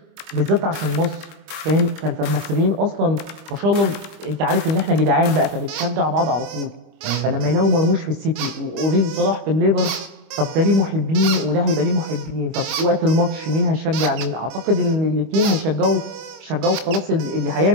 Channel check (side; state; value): left; late; 26 ms